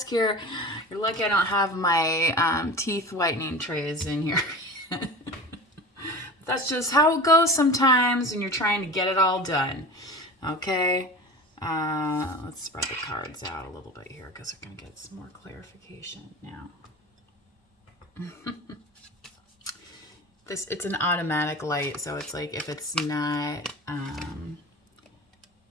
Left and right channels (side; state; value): both; normal; correlation 0.33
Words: here. You're lucky I don't have my teeth whitening trays in here. That's just how it goes sometimes when you're trying to get it all done. Okay? Let's spread the cards out a little bit here because we're going to get some more clarification now. It's an automatic light, so it's like if it's not,